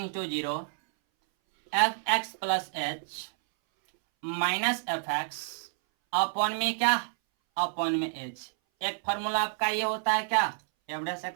to 0 f x plus H minus f x upon में क्या, अपॉन में एच। एक फार्मूला आपका ये होता है क्या, एफ डैश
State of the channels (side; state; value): left; silent; 58 dB below the other